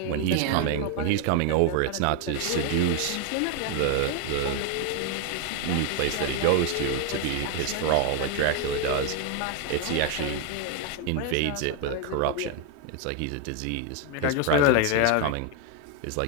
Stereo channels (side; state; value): both; different; correlation 0.01